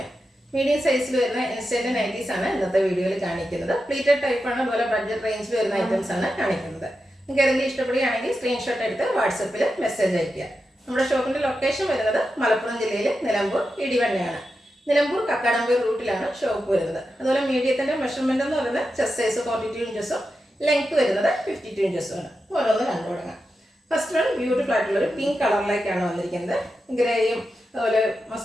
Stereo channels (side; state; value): both; normal; correlation 0.89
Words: മീഡിയം സൈസിൽ വരുന്ന ഇൻസ്റ്റന്റ് നൈറ്റീസ് ആണ് ഇന്നത്തെ വീഡിയോയിൽ കാണിക്കുന്നത്. പ്ലീറ്റഡ് ടൈപ്പ് ആണ്, അതുപോലെ ബഡ്ജറ്റ് റേഞ്ചിൽ വരുന്ന ഐറ്റംസ് ആണ് കാണിക്കുന്നത്. നിങ്ങൾക്ക് ഏതെങ്കിലും ഇഷ്ടപ്പെടുകയാണെങ്കിൽ സ്ക്രീൻഷോട്ട് എടുത്ത് വാട്സപ്പിൽ മെസ്സേജ് അയയ്ക്കുക. നമ്മുടെ ഷോപ്പിന്റെ ലൊക്കേഷൻ വരുന്നത് മലപ്പുറം ജില്ലയിൽ നിലമ്പൂർ ഇടിവണ്ണയാണ്. നിലമ്പൂർ കക്കാടമ്പൂർ റൂട്ടിലാണ് ഷോപ്പ് വരുന്നത്. അതുപോലെ മീഡിയത്തിന്റെ മെഷർമെന്റ് എന്ന് പറയുന്നത് ചെസ്റ്റ് സൈസ് 42 ഇഞ്ചസും ലെങ്ത് വരുന്നത് 52 ഇഞ്ചസും ആണ്. ഓരോന്ന് കണ്ടു തുടങ്ങാം. ഫസ്റ്റ് വൺ ബ്യൂട്ടിഫുൾ ആയിട്ടുള്ള ഒരു പിങ്ക് കളറിലേക്കാണ് വന്നിരിക്കുന്നത്. ഗ്രേയും അതുപോലെ